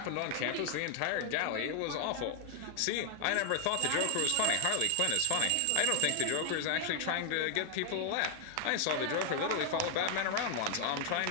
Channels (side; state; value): both; different; correlation 0.00